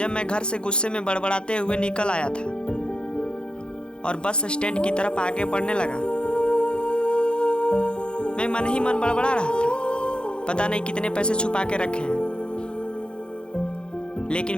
मैं घर से गुस्से में बड़बड़ाते हुए निकल आया था और बस स्टैंड की तरफ आगे बढ़ने लगा। मैं मन ही मन बड़बड़ा रहा था, पता नहीं कितने पैसे छुपा के रखे हैं,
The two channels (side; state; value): right; late; 0.052 ms